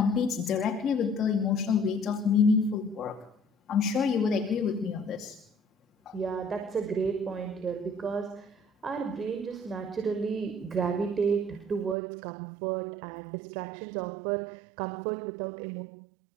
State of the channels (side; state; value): left; drops out; at 12.0 s